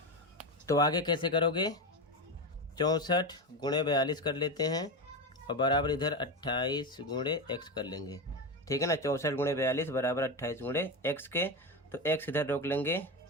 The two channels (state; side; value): normal; both; correlation 0.17